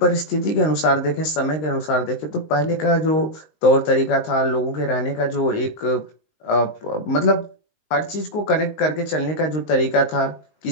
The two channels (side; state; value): right; late; 19 ms